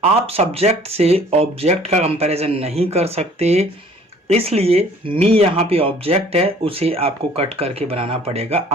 आप सब्जेक्ट से ऑब्जेक्ट का कंपैरिजन नहीं कर सकते, इसलिए मी यहाँ पे ऑब्जेक्ट है, उसे आपको कट करके बनाना पड़ेगा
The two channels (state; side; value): normal; both; correlation 0.53